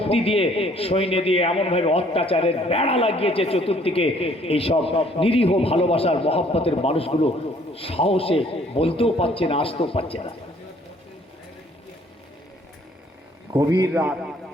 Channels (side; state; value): both; normal; correlation 0.60